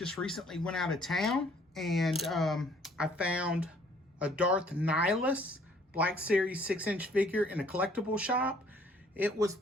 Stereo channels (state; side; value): normal; both; correlation 0.60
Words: recently went out of town, and I found a Darth Nihilus Black Series 6-inch figure in a collectible shop. It was